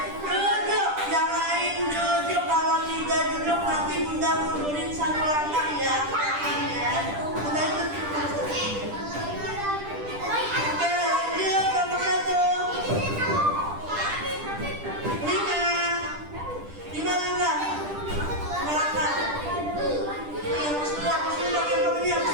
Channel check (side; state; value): left; late; 10 ms